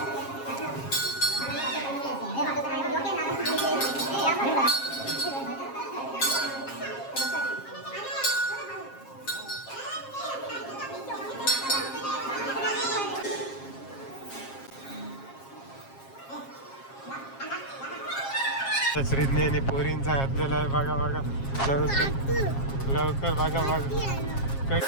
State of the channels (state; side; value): late; right; 7.4 ms